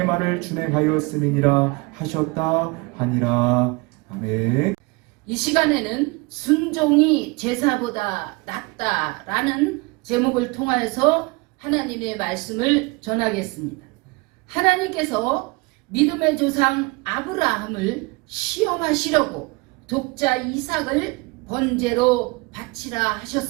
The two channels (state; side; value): quieter; left; 26.5 dB